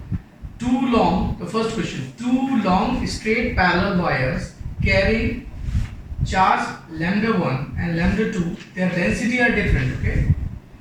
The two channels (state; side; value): identical; both; correlation 1.00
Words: The first question, two long straight parallel wires carrying charge lambda 1 and lambda 2, their density are different, okay,